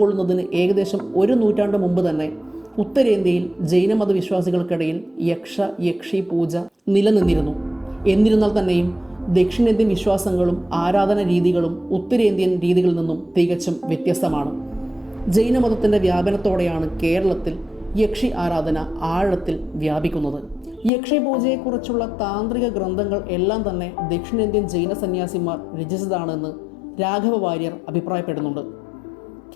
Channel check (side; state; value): right; drops out; at 20.9 s